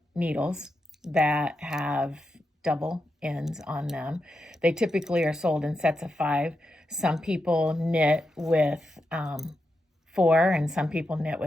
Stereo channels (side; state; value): both; normal; correlation 0.87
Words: needles that have double ends on them. They typically are sold in sets of 5. Some people knit with 4 and some people knit